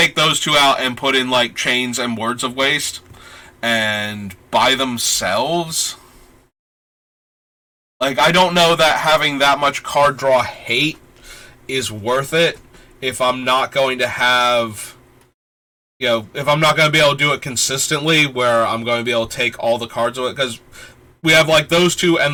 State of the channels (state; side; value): identical; both; correlation 1.00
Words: those two out and put in, like, Chains and Words of Waste, and by themselves, like, I don't know that having that much card draw hate is worth it if I'm not going to have, if I'm not going to be able to do it consistently, where I'm going to be able to take all the cards of it, because we have, like, those two